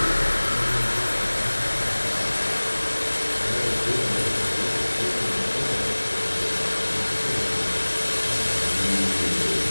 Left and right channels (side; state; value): both; inverted; correlation -1.00